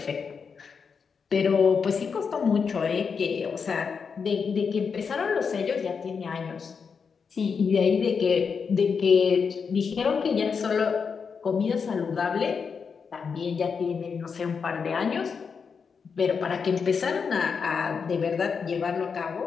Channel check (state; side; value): quieter; right; 5.9 dB